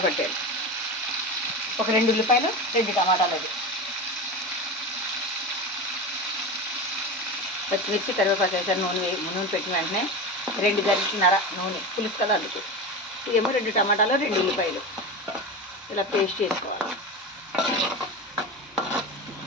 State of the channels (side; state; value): both; normal; correlation 0.25